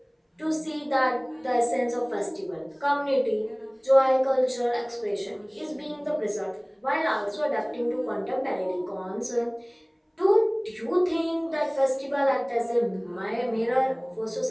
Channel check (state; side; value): identical; both; correlation 1.00